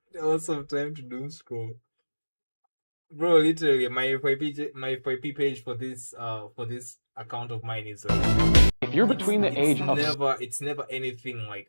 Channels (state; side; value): inverted; both; correlation -1.00